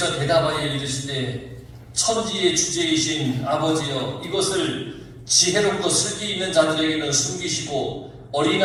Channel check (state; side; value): identical; both; correlation 1.00